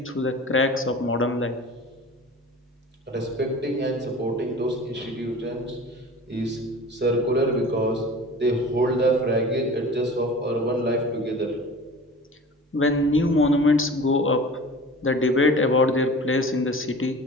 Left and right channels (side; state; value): both; normal; correlation 0.39